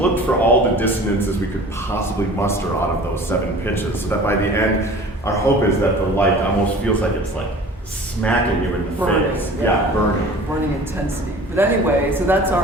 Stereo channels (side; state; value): both; normal; correlation 0.43